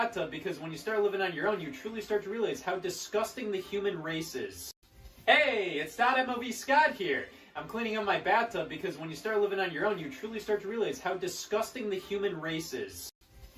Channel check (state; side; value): identical; both; correlation 1.00